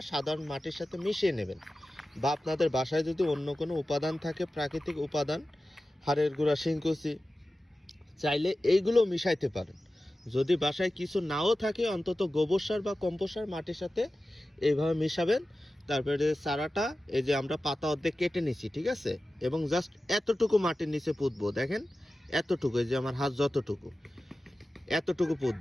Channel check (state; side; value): normal; both; correlation 0.95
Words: সাধারণ মাটির সাথে মিশিয়ে নেবেন, বা আপনাদের বাসায় যদি অন্য কোনো উপাদান থাকে, প্রাকৃতিক উপাদান, হাড়ের গুঁড়া, শিংকুচি, চাইলে এইগুলো মিশাইতে পারেন। যদি বাসায় কিছু নাও থাকে, অন্তত গোবর সার বা কম্পোস্ট সার মাটির সাথে এইভাবে মিশাবেন। তারপরে চারাটা এই যে আমরা পাতা অর্ধেক কেটে নিছি, ঠিক আছে, এবং জাস্ট এতটুকু মাটির নিচে পুঁতবো। দেখেন এতটুকু, এই যে আমার হাত যতটুকু, এতটুকু